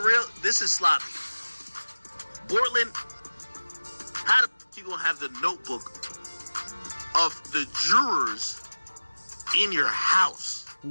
this is sloppy. Bortland, how the f*** you gonna have the notebook of the jurors in your house.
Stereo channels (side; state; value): both; inverted; correlation -1.00